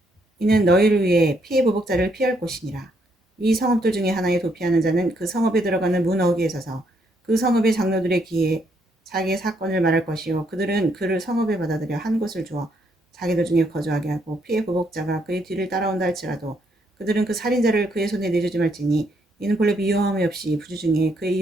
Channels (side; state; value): both; normal; correlation 0.73